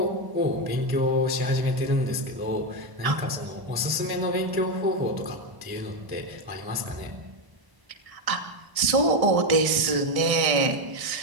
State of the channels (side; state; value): left; late; 1.0 ms